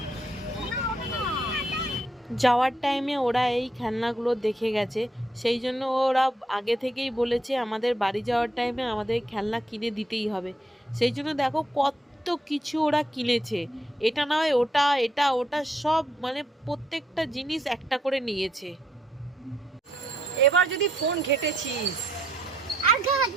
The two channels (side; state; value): both; normal; correlation 0.74